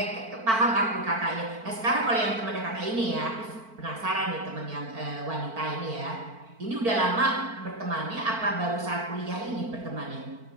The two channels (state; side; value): late; left; 4.5 ms